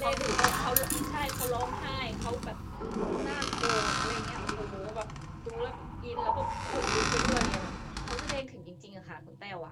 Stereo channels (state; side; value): identical; both; correlation 1.00